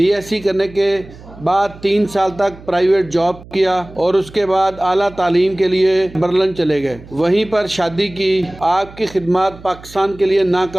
करने के बाद 3 साल तक प्राइवेट जॉब किया और उसके बाद आला तालीम के लिए बर्लिन चले गए। वहीं पर शादी की। आपकी खिदमत पाकिस्तान के लिए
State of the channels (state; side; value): noise; right; hum, 19 dB below the sound